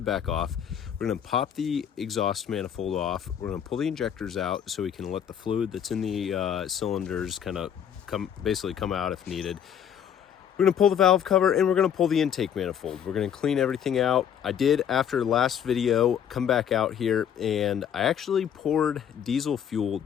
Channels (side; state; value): right; quieter; 8.8 dB